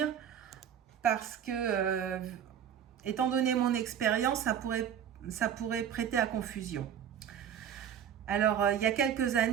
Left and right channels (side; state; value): left; quieter; 8.9 dB